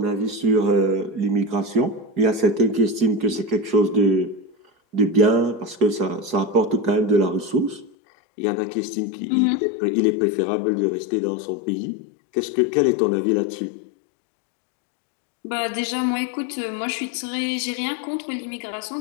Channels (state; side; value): drops out; right; at 7.9 s